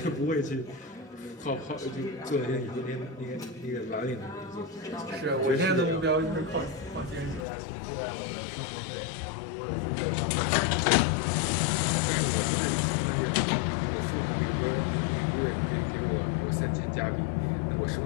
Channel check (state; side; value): drops out; right; at 7.5 s